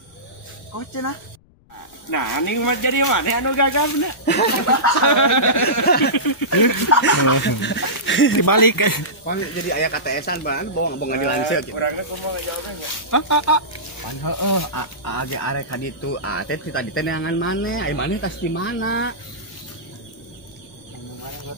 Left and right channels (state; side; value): noise; left; rumble, 29 dB below the sound